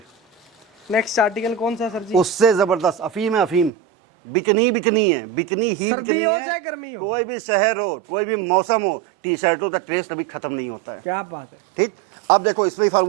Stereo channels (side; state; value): left; drops out; at 3.7 s